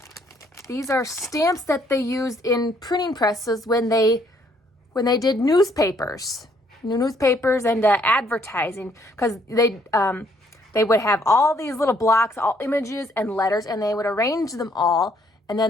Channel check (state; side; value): normal; both; correlation 0.67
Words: These are stamps that they used in printing presses when they did newspapers and advertising, because they would have all these little blocks, all images and letters, and they would arrange them all, and